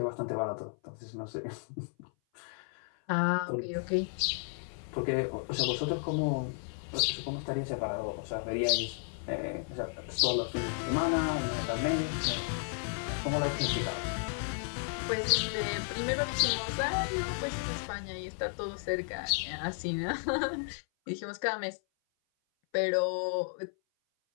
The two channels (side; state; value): right; silent; 56 dB below the other